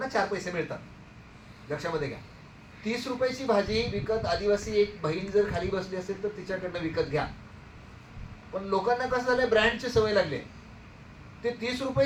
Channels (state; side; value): identical; both; correlation 1.00